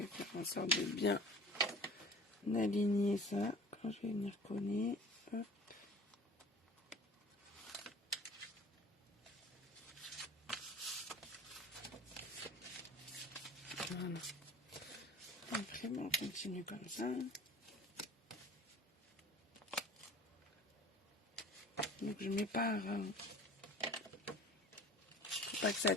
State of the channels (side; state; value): both; normal; correlation 0.44